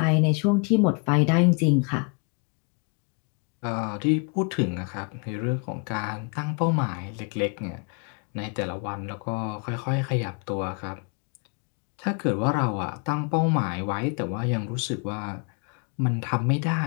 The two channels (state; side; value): quieter; right; 36.1 dB